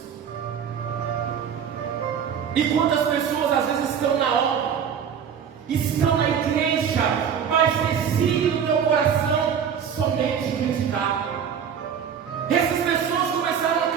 E quantas pessoas às vezes estão na obra, estão na igreja, mas decidem no teu coração somente criticar. Essas pessoas começaram a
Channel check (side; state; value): left; quieter; 7.7 dB